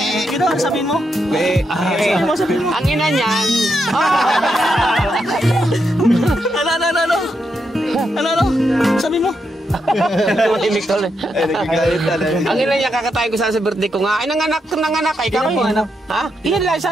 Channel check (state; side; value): normal; both; correlation 0.82